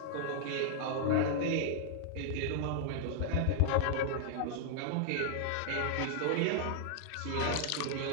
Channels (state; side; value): different; both; correlation -0.01